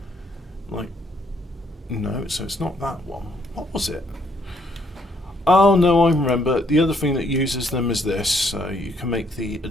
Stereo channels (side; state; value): both; normal; correlation 0.69